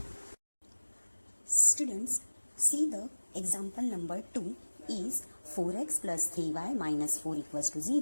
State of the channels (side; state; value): both; inverted; correlation -1.00